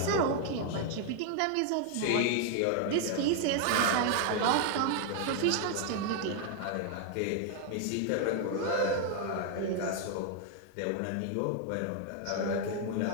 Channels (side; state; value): both; different; correlation 0.00